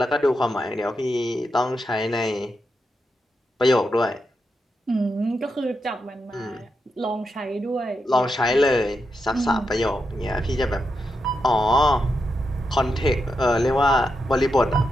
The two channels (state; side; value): normal; both; correlation 0.85